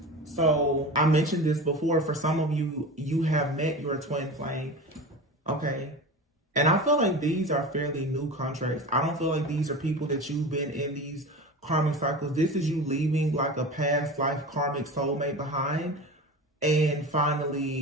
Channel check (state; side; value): normal; both; correlation 0.31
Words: So I mentioned this before. For some of you, you have met your twin flame. Okay. And I feel like these are fairly new contracts. I don't feel like these are people that you've been in these karmic cycles. This is you leaving like a past life karmic soulmate behind and